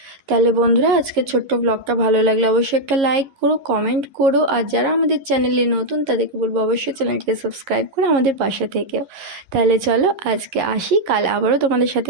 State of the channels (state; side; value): late; left; 11 ms